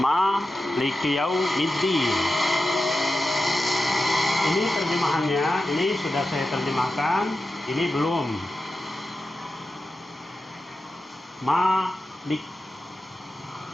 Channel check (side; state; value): both; normal; correlation 0.92